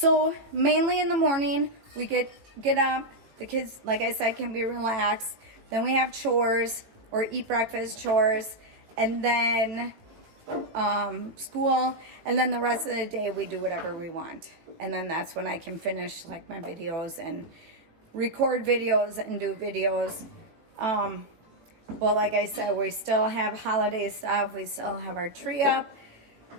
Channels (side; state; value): left; late; 18 ms